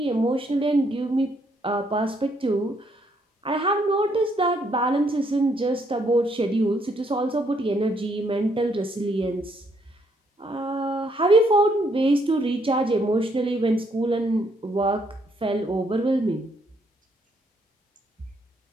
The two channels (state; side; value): normal; both; correlation 0.71